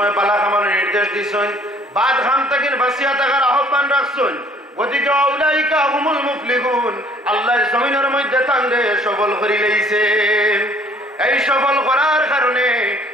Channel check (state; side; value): normal; both; correlation 0.58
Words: বালা খামার নির্দেশ দিছেন, বাদ খাম থেকে বাঁচিয়া থাকার আহ্বান রাখছেন। গতিকে আউলাইকা হুমুল মুফলিহুন, আল্লাহ জমিনের মধ্যে তান্ডে সফল করে লইছে। এই সফল করার কারণে